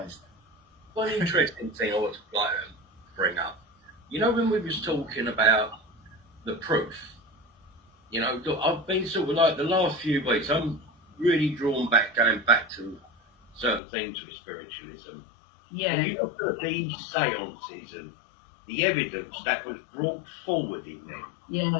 One interesting thing I would like to bring up. When we was talking about the proof, I've been sort of like the last few weeks, I'm really going back to certain things with spiritualism. Yeah. And you look at these seances and the evidence that was brought forward in them. Yeah.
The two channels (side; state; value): right; drops out; at 13.8 s